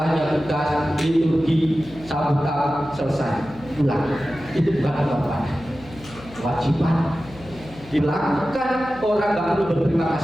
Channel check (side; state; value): left; noise; hum, 19 dB below the sound